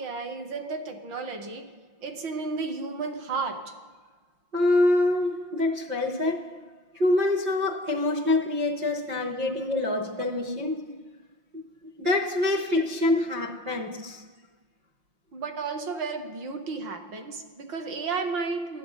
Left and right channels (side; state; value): left; late; 5.7 ms